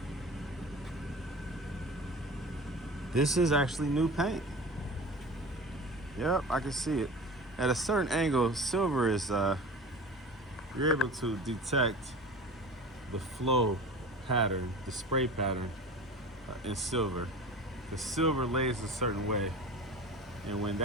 this is actually new paint. Yep, I can see it. At a certain angle, silver is, you're able to detect the flow pattern, the spray pattern in silver. The silver lays a certain way, and when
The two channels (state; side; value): normal; both; correlation 0.35